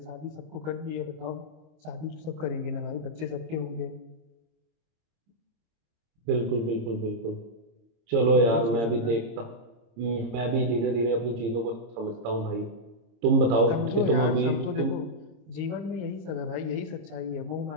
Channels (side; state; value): left; late; 26 ms